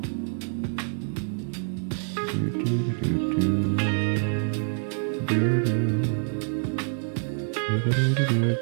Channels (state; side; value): silent; left; 61 dB below the other